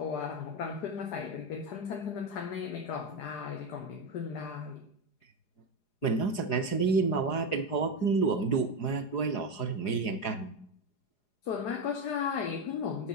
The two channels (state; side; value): late; right; 4.8 ms